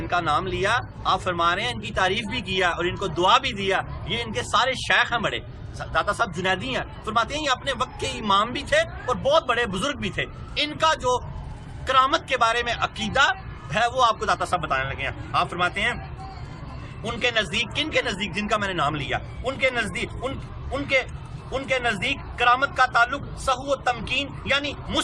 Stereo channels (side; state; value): both; identical; correlation 1.00